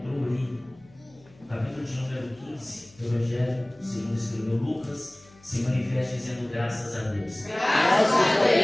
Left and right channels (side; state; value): left; noise; hum, 27 dB below the sound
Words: ali, capítulo de número 15, do Evangelho, segundo escreveu Lucas, se manifesta dizendo graças a Deus. Graças a